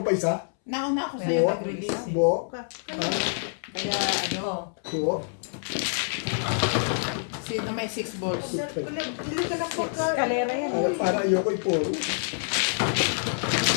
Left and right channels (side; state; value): right; silent; 60 dB below the other